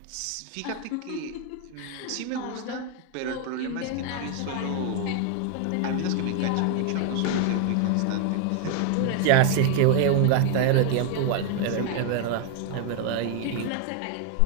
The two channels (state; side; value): different; both; correlation 0.00